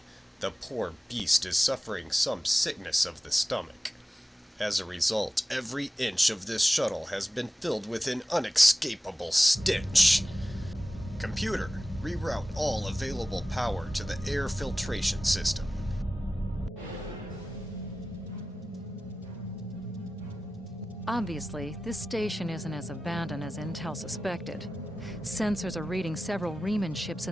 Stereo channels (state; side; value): normal; both; correlation 0.95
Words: the poor beast is suffering some sickness of the stomach. As a result, every inch of this shuttle has been filled with an unescapable stench. Computer, reroute all available power to the air filtration system. Obviously, this station isn't as abandoned as Intel suspected. Sensors are reading several Riemann ships